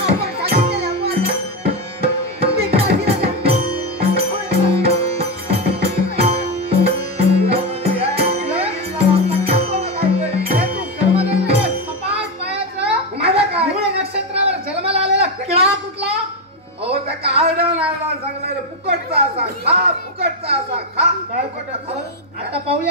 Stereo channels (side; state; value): both; normal; correlation 0.10